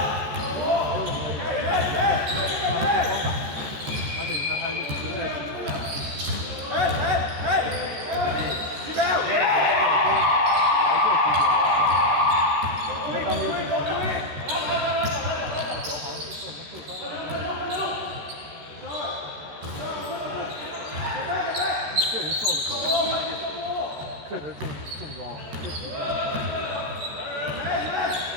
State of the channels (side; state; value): left; late; 13 ms